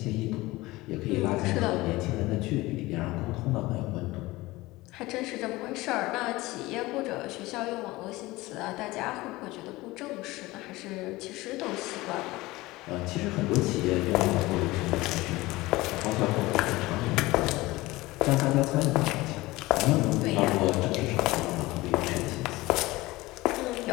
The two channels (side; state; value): right; quieter; 19.9 dB